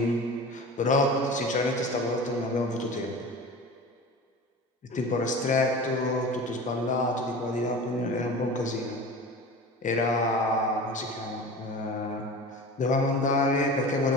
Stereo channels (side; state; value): both; normal; correlation 0.35